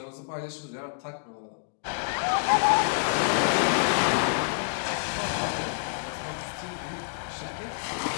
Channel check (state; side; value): silent; right; digital silence